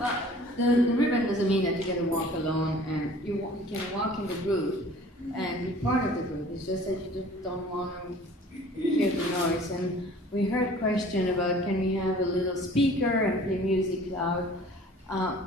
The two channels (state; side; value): normal; both; correlation 0.49